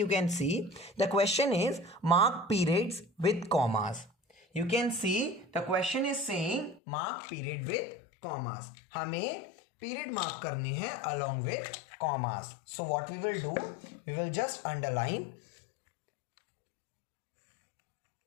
can see the question is mark periods with commas. You can see the question is saying mark period with commas. हमें पीरियड मार्क करने हैं along with commas. So what we will do, we will just underline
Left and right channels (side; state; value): right; drops out; at 6.8 s